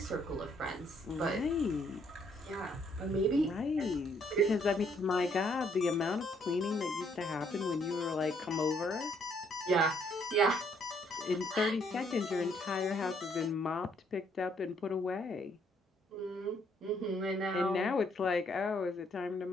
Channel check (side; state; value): both; normal; correlation 0.68